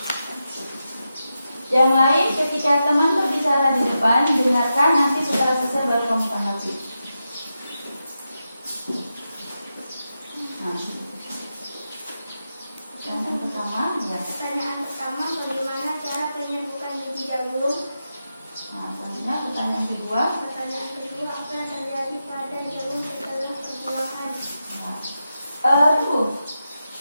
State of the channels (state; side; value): inverted; both; correlation -0.89